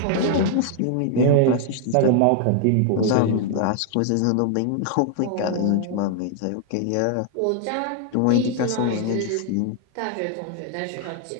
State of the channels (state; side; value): different; both; correlation 0.00